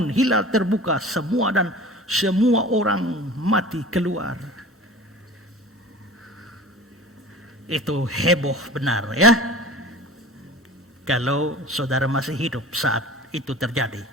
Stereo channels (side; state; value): both; normal; correlation 0.40